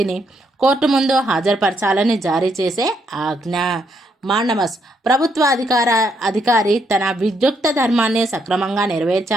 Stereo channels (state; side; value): normal; both; correlation 0.75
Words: కోర్టు ముందు హాజరుపరచాలని జారీ చేసే ఆజ్ఞ. మాండమస్ ప్రభుత్వ అధికారి తన విద్యుక్త ధర్మాన్ని సక్రమంగా